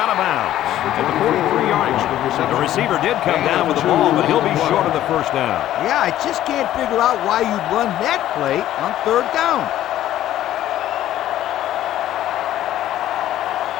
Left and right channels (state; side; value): quieter; right; 12.9 dB